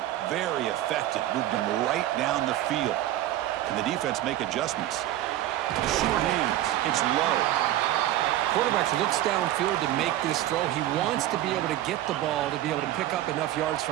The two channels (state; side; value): quieter; left; 13.9 dB